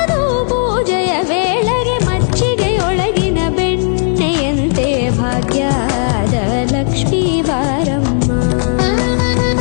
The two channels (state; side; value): silent; right; 59 dB below the other